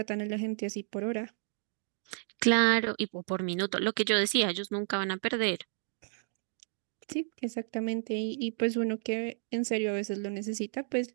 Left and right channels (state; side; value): silent; left; 56 dB below the other